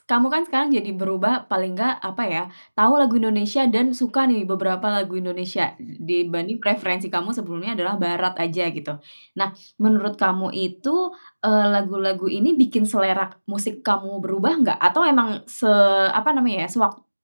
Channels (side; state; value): both; inverted; correlation -1.00